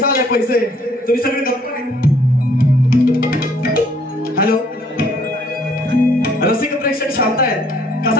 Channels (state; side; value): normal; both; correlation 0.62